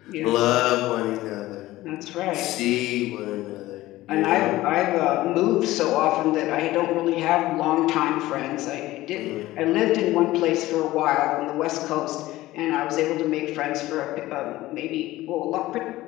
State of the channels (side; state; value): right; quieter; 16.9 dB